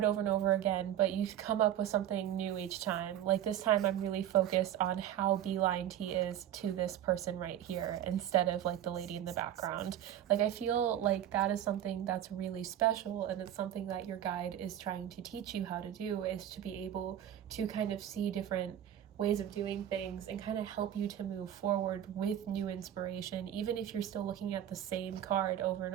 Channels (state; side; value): quieter; left; 11.2 dB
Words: over and over again, but you come up with something new each time. Like this time I'm really focused on how beelined he is to this person right here instead of like the lady in the background. Like I feel like that is something that's really special, and it's something that your guide is trying to teach you how to do, is to be able to kind of see different ways of doing things and kind of help you to move forward with new inspiration. Even if you're still looking at the same card over and